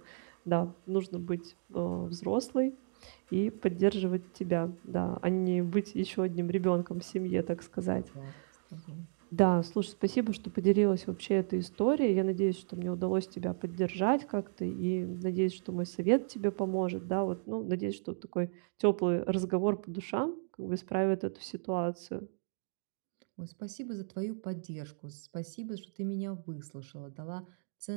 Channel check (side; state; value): left; silent; digital silence